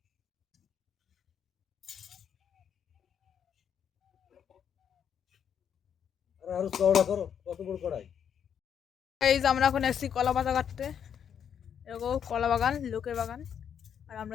আরো চওড়া করো, কত বড় কড়াই। এই যে আমরা এখন এসেছি কলা পাতা কাটতে। এরকম কলা বাগান, লোকের বাগান, আর আমরা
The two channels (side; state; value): right; quieter; 8.3 dB